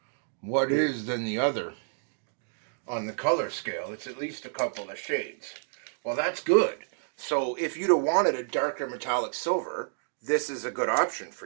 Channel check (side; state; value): left; silent; digital silence